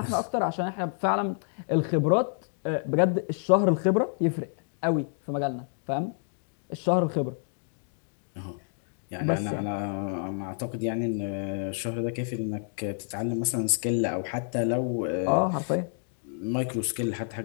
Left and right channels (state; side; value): silent; right; 59 dB below the other